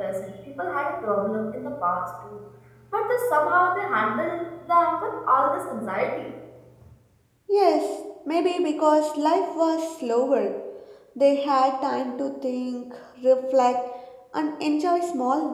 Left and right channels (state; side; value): identical; both; correlation 1.00